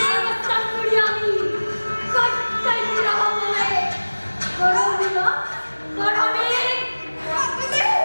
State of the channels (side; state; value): both; inverted; correlation -1.00